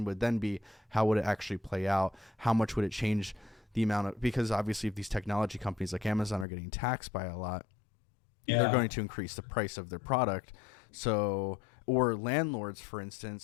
would then be, how would it actually play out? How much would it change the amount of, because obviously if these technology companies like Amazon are getting taxed by a lot, they're going to increase the price of their product. So, or landlords, for instance.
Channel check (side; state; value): right; drops out; at 6.5 s